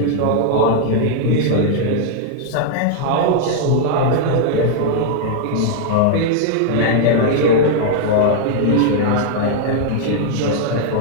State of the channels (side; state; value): both; different; correlation -0.01